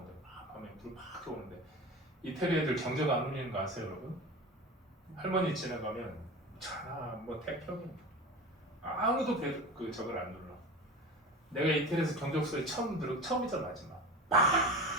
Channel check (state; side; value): normal; both; correlation 0.31